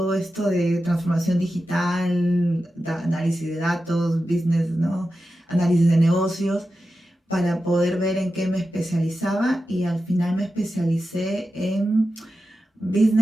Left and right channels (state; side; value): normal; both; correlation 0.91